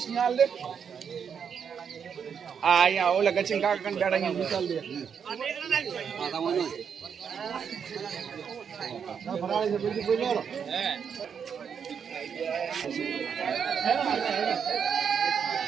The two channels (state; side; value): quieter; left; 7.2 dB